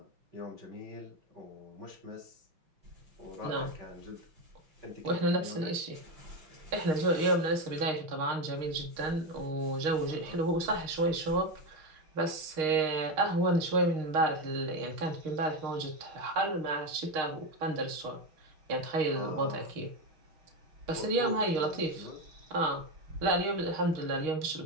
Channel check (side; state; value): left; late; 6.4 ms